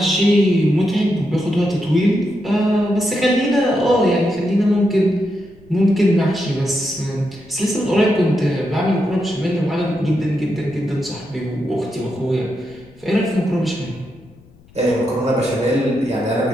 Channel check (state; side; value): noise; left; rumble, 27 dB below the sound